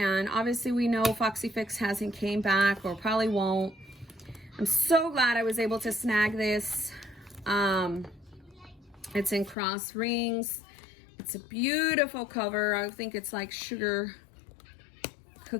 obviously we know Foxy Fix hasn't came back, or probably won't. I'm so glad I was able to snag this. It's in cross rings. It's a beautiful cover. I think it's like sugar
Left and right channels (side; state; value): right; drops out; at 9.6 s